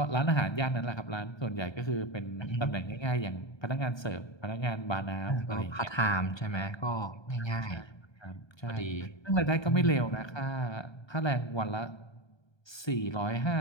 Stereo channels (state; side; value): late; right; 1.3 ms